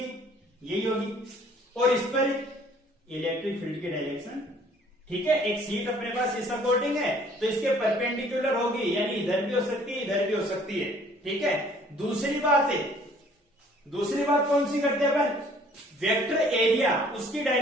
यही होगी, और इस पर इलेक्ट्रिक फील्ड की डायरेक्शन। ठीक है, एक शीट अपने पास इस अकॉर्डिंग है तो इसके परपेंडिकुलर होगी, यानी इधर भी हो सकती है, इधर भी हो सकती है। ठीक है, दूसरी बात कौन सी करते हैं अपन, वेक्टर एरिया, उसकी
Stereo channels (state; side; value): normal; both; correlation 0.57